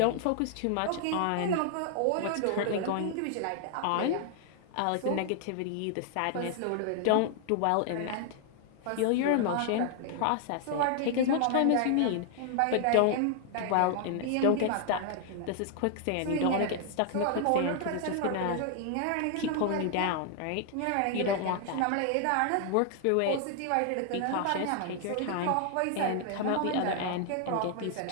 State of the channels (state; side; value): different; both; correlation 0.00